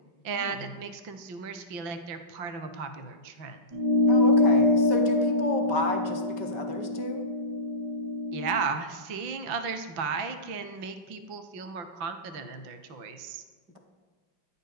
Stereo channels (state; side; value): late; left; 5.9 ms